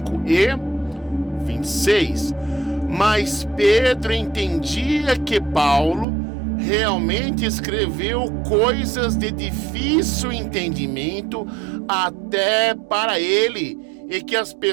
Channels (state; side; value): drops out; left; at 6.1 s